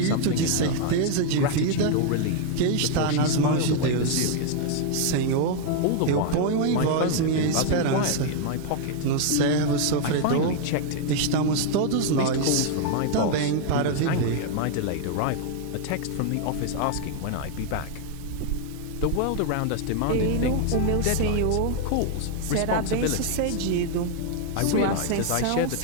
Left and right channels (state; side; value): different; both; correlation 0.00